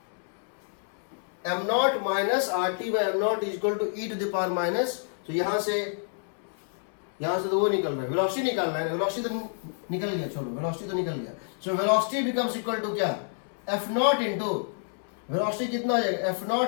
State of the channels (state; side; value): silent; right; 59 dB below the other